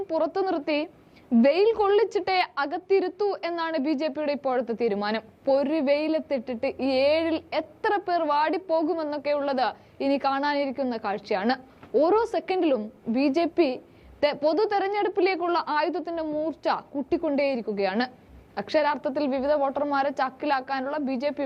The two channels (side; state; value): both; identical; correlation 1.00